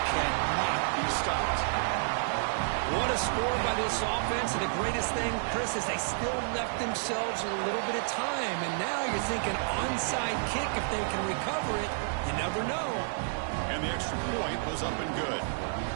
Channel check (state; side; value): silent; left; digital silence